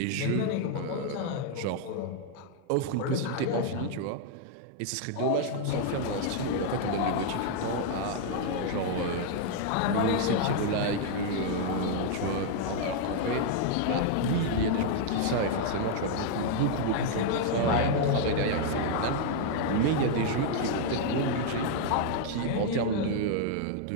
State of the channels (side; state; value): both; different; correlation 0.00